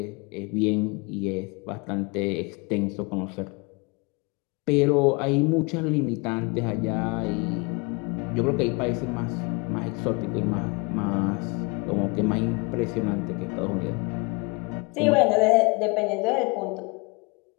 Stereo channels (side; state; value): right; quieter; 29.2 dB